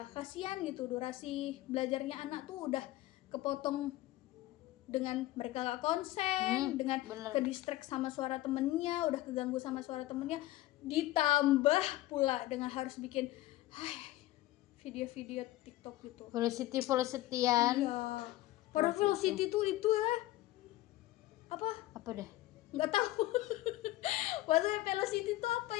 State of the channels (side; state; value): right; quieter; 16.4 dB